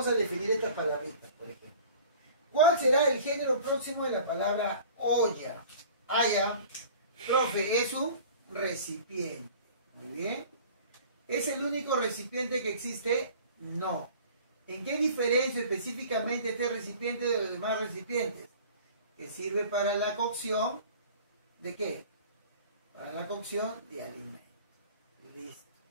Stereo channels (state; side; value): inverted; both; correlation -0.45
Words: a definir estas palabritas, por ejemplo. ¿Cuál será el género próximo de la palabra olla? Ya. Profe, es un recipiente. Muy bien. ¿Es el único recipiente que existe? No. ¿En qué diferencia específicamente este recipiente de los demás recipientes? Que sirve para la cocción ¿de qué? Para la cocción de alimentos. Listo.